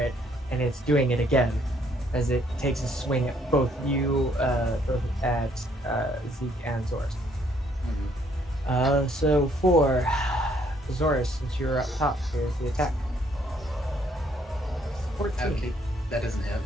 and it's doing it again as it takes a swing at both you, both at Zeke and Zoris. So for Zoris, since you're up top, here's the attack. 14. Okay, that doesn't hit.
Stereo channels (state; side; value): normal; both; correlation 0.67